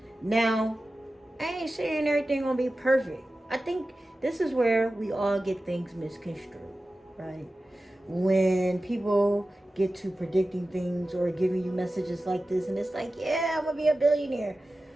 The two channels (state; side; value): normal; both; correlation 0.95